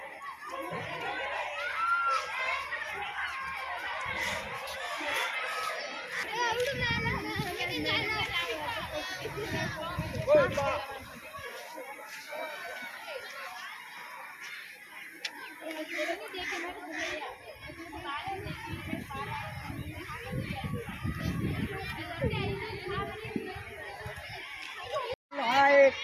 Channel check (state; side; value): identical; both; correlation 1.00